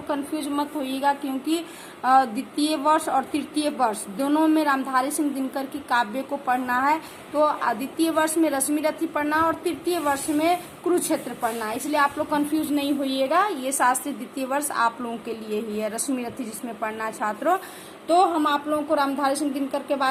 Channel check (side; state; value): both; identical; correlation 1.00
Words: कंफ्यूज मत होइएगा क्योंकि द्वितीय वर्ष और तृतीय वर्ष दोनों में रामधारी सिंह दिनकर की काव्य को पढ़ना है। तो द्वितीय वर्ष में रश्मि रथी पढ़ना और तृतीय वर्ष में कुरुक्षेत्र पढ़ना है, इसलिए आप लोग कंफ्यूज नहीं होइएगा। ये शास्त्री द्वितीय वर्ष आप लोगों के लिए ही है, रश्मि रथी जिसमें पढ़ना है छात्रों। तो हम आप लोगों को रामधारी सिंह दिनकर के